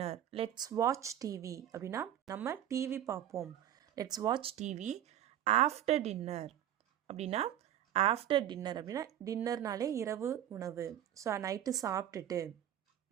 Let's watch TV அப்படின்னா நம்ம டிவி பார்ப்போம். Let's watch TV after dinner அப்படின்னா ஆஃப்டர் டின்னர் அப்படின்னா டின்னர்னாலே இரவு உணவு. ஸோ நைட்டு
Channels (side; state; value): left; quieter; 11.4 dB